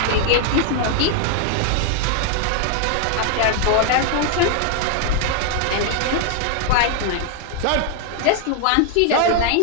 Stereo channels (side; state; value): both; different; correlation 0.00